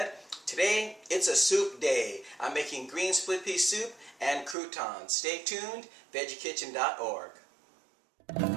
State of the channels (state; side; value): drops out; left; at 4.5 s